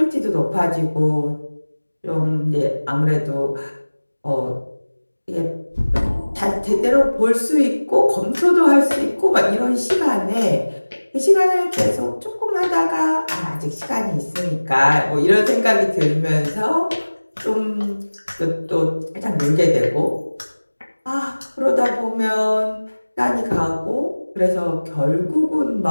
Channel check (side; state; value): both; inverted; correlation -1.00